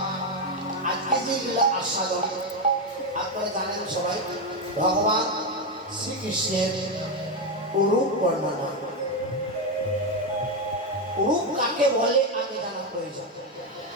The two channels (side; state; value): both; normal; correlation 0.08